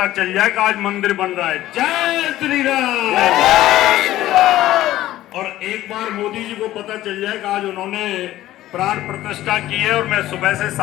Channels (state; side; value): quieter; right; 14.7 dB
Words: चल जाए कि आज मंदिर बन रहा है। जय श्री राम। और एक बार मोदी जी को पता चल जाए कि आज उन्होंने प्राण प्रतिष्ठा की है। और मैं सुबह से